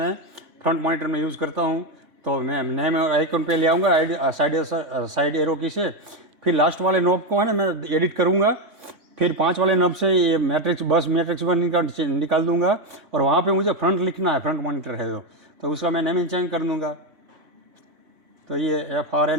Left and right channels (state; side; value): late; left; 3.5 ms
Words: फ्रंट मॉनिटर में यूज़ करता हूँ। तो मैं नेम आइकन पे ले आऊँगा साइड एरो की से। फिर लास्ट वाले नॉब को है ना मैं एडिट करूँगा। फिर 5 वाले नॉब से ये मैट्रिक्स 1 निकाल दूँगा। और वहाँ पे मुझे फ्रंट लिखना है, फ्रंट मॉनिटर है तो उसका मैं नेमिंग चेंज कर दूँगा। तो ये FRN